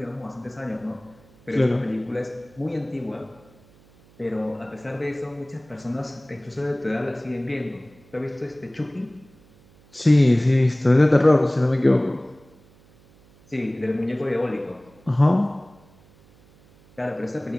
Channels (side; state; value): right; noise; hum, 28 dB below the sound